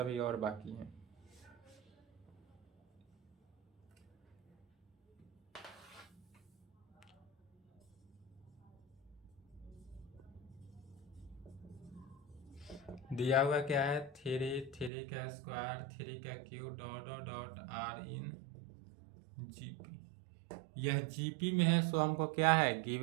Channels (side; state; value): left; drops out; at 14.9 s